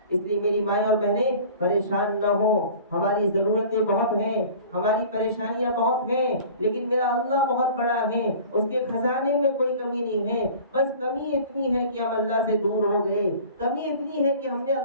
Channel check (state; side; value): inverted; both; correlation -0.44